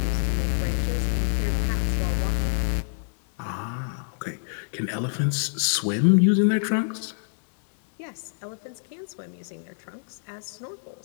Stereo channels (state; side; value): silent; right; 61 dB below the other